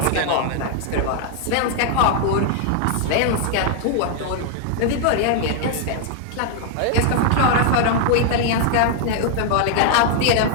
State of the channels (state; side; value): different; both; correlation 0.00